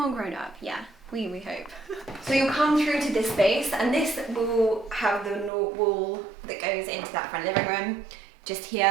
grown up, yeah. We hope. So you'll come through to this space, and this will have the wall that goes into that front living room. Just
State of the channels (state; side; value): drops out; left; at 5.5 s